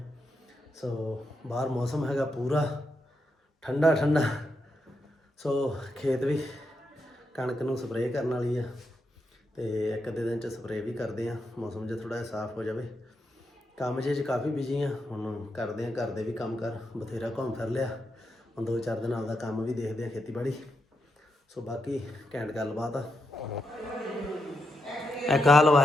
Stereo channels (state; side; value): normal; both; correlation 0.84